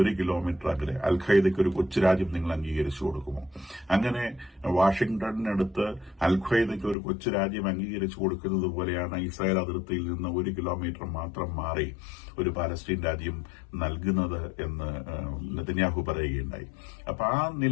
1 കിലോമീറ്റർ അകലെ അൽ-ഖ്വയ്ദയ്ക്ക് ഒരു കൊച്ചു രാജ്യം നിങ്ങൾ അംഗീകരിച്ചു കൊടുക്കുമോ? അങ്ങനെ വാഷിംഗ്ടണിനടുത്ത് അൽ-ഖ്വയ്ദയ്ക്ക് ഒരു കൊച്ചു രാജ്യം അംഗീകരിച്ചു കൊടുക്കുന്നത് പോലെയാണ് ഇസ്രായേൽ അതിർത്തിയിൽ നിന്ന് 1 കിലോമീറ്റർ മാത്രം മാറി ഒരു പാലസ്തീൻ രാജ്യം നൽകുന്നത് എന്ന് നെതന്യാഹു പറയുകയുണ്ടായി. അപ്പൊ ആ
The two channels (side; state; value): right; drops out; at 7.0 s